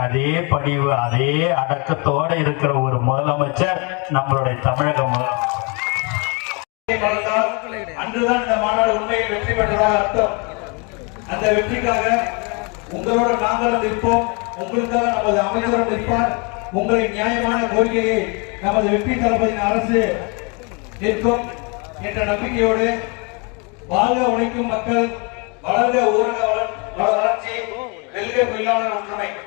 அதே பணிவு அதே அடக்கத்தோட இருக்கிற ஒரு முதலமைச்சர் நம்மளுடைய தமிழக முதலமைச்சர். அன்றுதான் இந்த மாநாடு உண்மையில் வெற்றி பெற்றதாக அர்த்தம். அந்த வெற்றிக்காக உங்களோட நாங்களும் நிற்போம், உங்களுக்காக நமது அமைச்சரும் நிற்பார். உங்களின் நியாயமான கோரிக்கையை நமது வெற்றி தளபதியின் அரசு நிற்கும் என்ற நம்பிக்கையோடு வாழ்க உழைக்கும் மக்கள், வளர்க ஊரக வளர்ச்சி, வெல்க தொழிலாளர் ஒற்றுமை.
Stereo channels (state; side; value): quieter; right; 32.4 dB